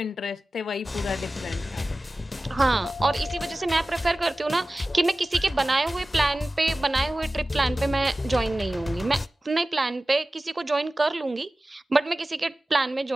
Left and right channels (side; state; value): both; normal; correlation 0.96